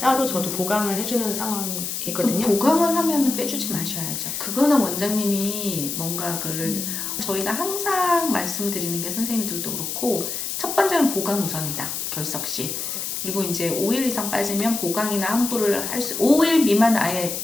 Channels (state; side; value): noise; left; hiss, 4 dB below the sound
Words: 저도 보강을 해주는 상황이거든요. 보강을 하면 빼주지 마셔야죠. 그거는 원장님이 뭔가 그를 저희가 항상 말씀드리는 게 선생님들도 그렇고 첫 번째는 보강 우선이다. 결석 시. 그리고 이제 5일 이상 빠지면 보강이나 환불을 할 수 5일 미만 아예